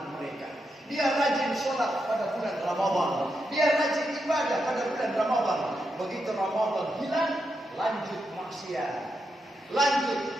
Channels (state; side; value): normal; both; correlation 0.84